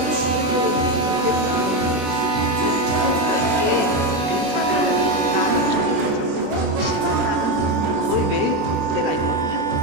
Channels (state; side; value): late; left; 20 ms